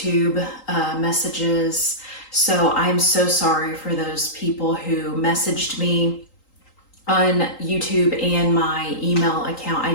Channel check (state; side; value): late; right; 3.8 ms